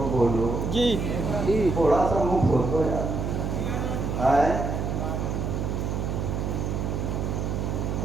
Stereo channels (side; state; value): right; noise; hum, 1 dB below the sound